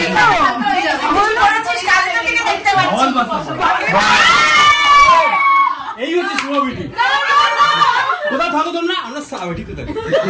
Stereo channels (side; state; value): both; identical; correlation 1.00